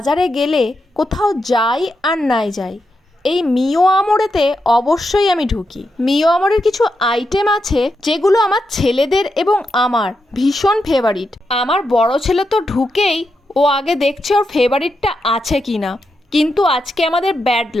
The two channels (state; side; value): normal; both; correlation 0.85